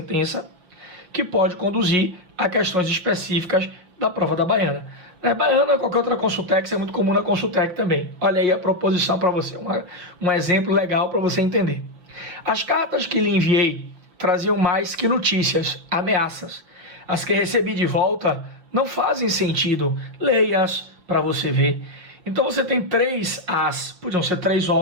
que pode conduzir a questões específicas da prova da Baiana. Baiana ou qualquer outra Consultec, isso é muito comum na Consultec também. Olha aí a proposição para você, um exemplo legal para você entender. As cartas que lhe enviei traziam mais que notícias, ameaças. As que recebi de volta não fazem sentido. Leia-as para você ver. Então você tem três as, podiam ser três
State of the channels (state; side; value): late; left; 5.6 ms